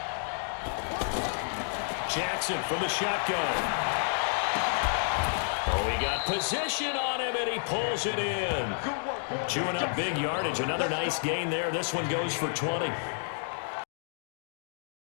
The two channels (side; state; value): right; silent; digital silence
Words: Jackson from the shotgun. Oh, he got position on him, and he pulls it in. Chewing up big yardage. Another nice gain there. This one goes for 20.